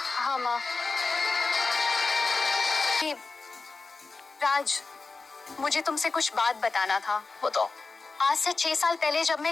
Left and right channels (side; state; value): right; quieter; 4.0 dB